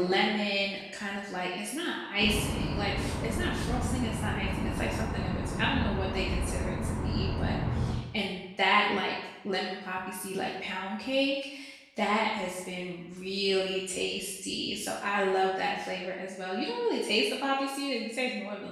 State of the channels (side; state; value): both; identical; correlation 1.00